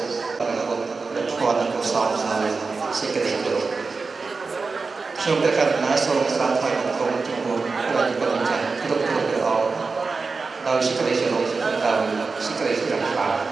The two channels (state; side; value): quieter; left; 4.3 dB